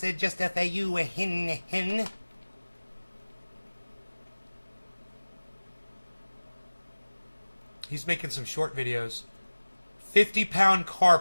just for you, hin. He's making some short videos. 50-pound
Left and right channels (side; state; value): both; inverted; correlation -1.00